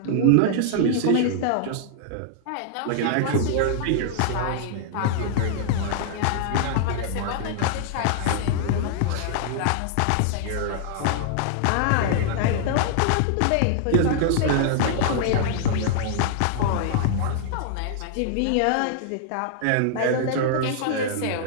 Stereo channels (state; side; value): different; both; correlation -0.01